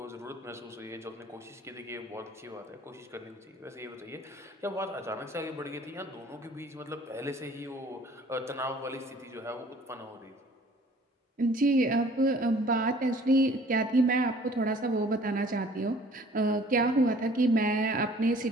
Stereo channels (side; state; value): both; normal; correlation 0.53